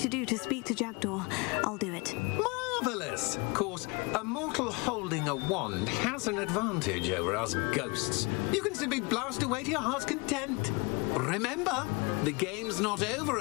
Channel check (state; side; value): quieter; right; 28.2 dB